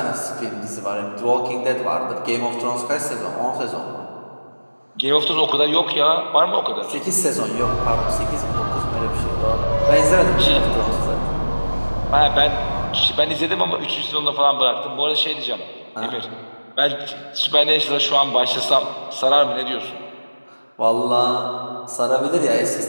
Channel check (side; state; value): both; inverted; correlation -1.00